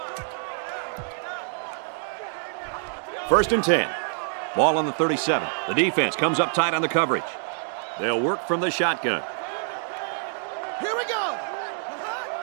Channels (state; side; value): silent; left; 57 dB below the other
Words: First and 10. Ball on the 37. The defense comes up tight on the coverage. They'll work from the shotgun. Here we go.